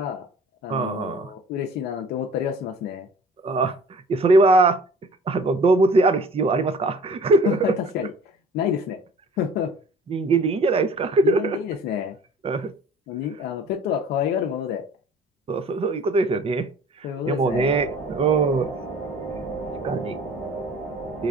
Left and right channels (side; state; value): both; normal; correlation 0.47